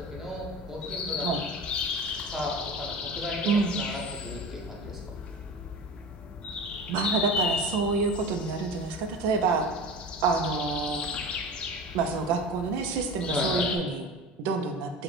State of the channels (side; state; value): both; normal; correlation 0.32